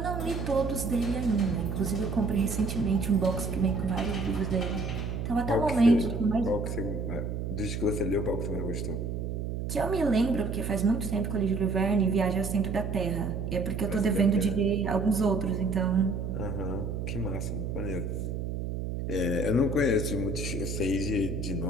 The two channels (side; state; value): right; noise; hum, 3 dB below the sound